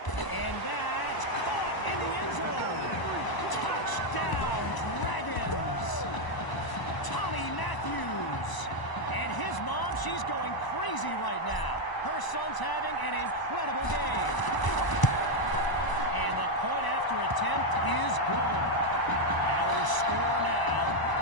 that's caught in the end zone. Touchdown, Dragons. Tommy Matthews. And his mom, she's going crazy right now. Her son's having an incredible game. And the point after attempt is good. Our score now,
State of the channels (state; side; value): late; right; 1.0 ms